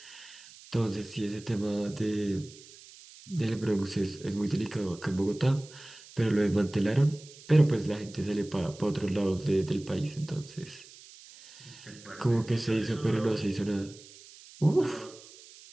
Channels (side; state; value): right; noise; hiss, 20 dB below the sound